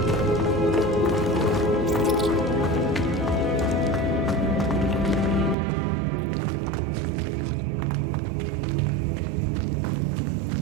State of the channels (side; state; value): left; drops out; at 5.6 s